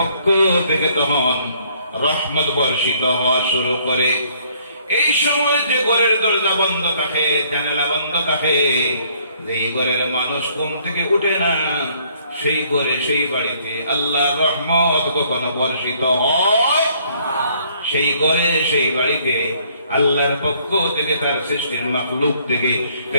থেকে তখন রহমত বর্ষিত হওয়া শুরু করে। এই সময় যে ঘরের দরজা বন্ধ থাকে, জানালা বন্ধ থাকে, যেই ঘরের মানুষ ঘুম থেকে উঠে না, সেই ঘরে, সেই বাড়িতে আল্লাহর রহমত কখনো বর্ষিত হয়? সেই ঘরে, সেই বাড়িতে আল্লাহর পক্ষ থেকে, তার সৃষ্টির মাখলুক থেকে,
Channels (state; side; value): inverted; both; correlation -0.63